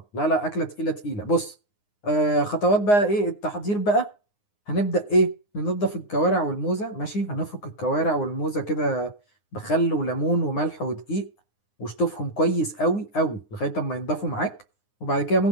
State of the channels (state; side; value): late; right; 9.7 ms